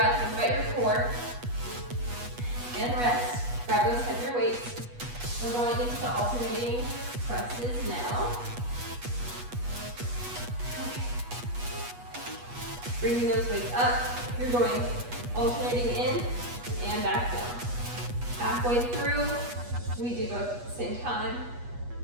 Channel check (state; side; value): late; left; 8.3 ms